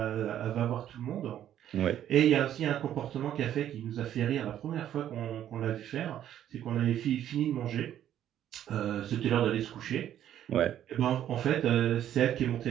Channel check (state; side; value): quieter; left; 11.1 dB